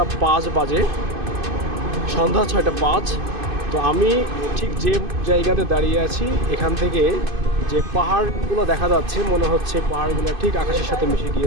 5 বাজে, সন্ধ্যা 6টা 5। তো আমি ঠিক যে জায়গাতে দাঁড়িয়ে আছি, এখান থেকে যে পাহাড়গুলো দেখা যাচ্ছে, মনে হচ্ছে পাহাড়গুলো ঠিক আকাশের সাথে মিশে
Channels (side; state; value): left; late; 2.5 ms